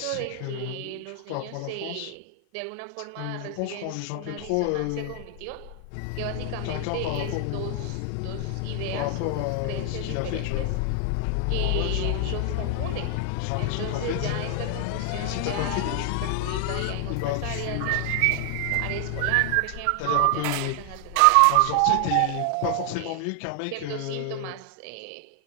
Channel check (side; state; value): both; different; correlation 0.00